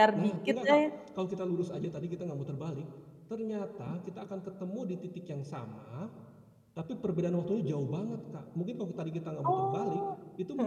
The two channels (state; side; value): identical; both; correlation 1.00